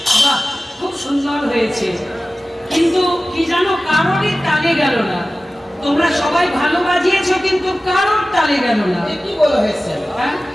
বাহ, খুব সুন্দর হয়েছে, কিন্তু কি জানো, কারোরই তালে গেল না। তোমরা সবাই ভালো বাজিয়েছো, কিন্তু কারোর তালে গেল না। এ কি বলা হয়েছে? হ্যাঁ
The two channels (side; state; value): both; normal; correlation 0.96